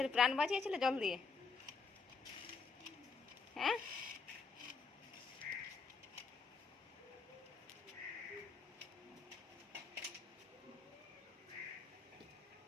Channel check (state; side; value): quieter; right; 4.8 dB